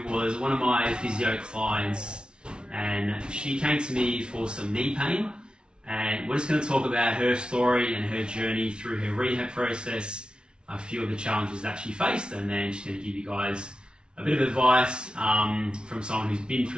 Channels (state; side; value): late; left; 0.056 ms